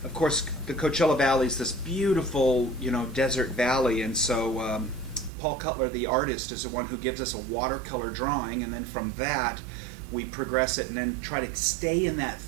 of course, the Coachella Valley is this beautiful, desert valley, and so Paul Cutler, the artist, is the one who gives us a watercolor drawing, and then from that we progress it and then try to stay in that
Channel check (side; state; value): left; drops out; at 5.3 s